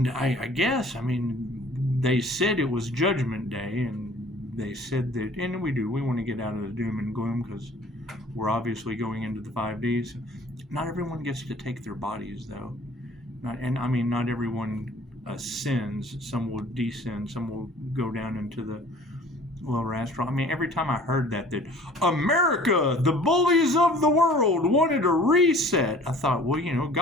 I guess. I mean, they said it was Judgment Day, and they said that, and we want to get out of the doom and gloom because we're obviously going into the 5Ds. Not everyone gets to take their bodies, though. Not everyone ascends. Some will descend. Some will go down into the lower astral. I mean, every time I heard that America, the bullies of the world, wanted a reset, I thought, well,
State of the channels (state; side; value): normal; both; correlation 0.50